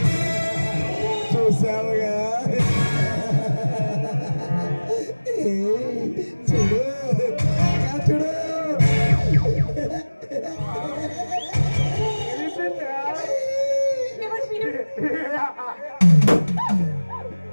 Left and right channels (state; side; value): inverted; both; correlation -1.00